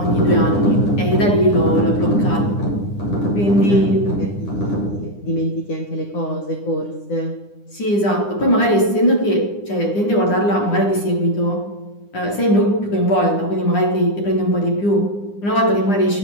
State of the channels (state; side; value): late; right; 9.9 ms